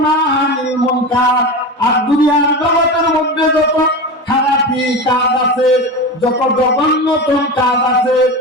আনিল মুনকার, আর দুনিয়ার জগতের মধ্যে যত খারাপি কাজ আছে, যত জঘন্যতম কাজ আছে,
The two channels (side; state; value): both; normal; correlation 0.25